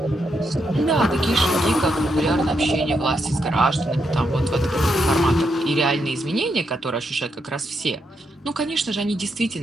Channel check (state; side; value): normal; both; correlation 0.81